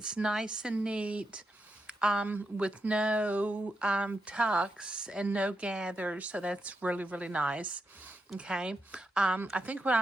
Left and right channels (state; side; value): normal; both; correlation 0.85